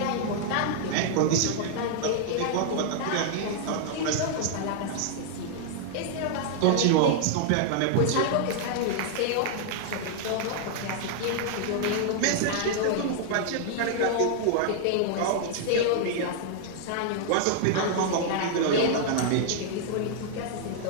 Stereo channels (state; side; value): different; both; correlation -0.01